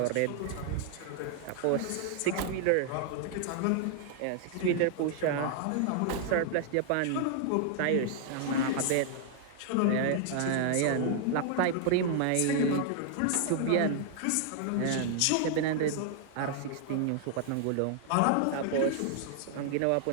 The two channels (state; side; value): different; both; correlation -0.01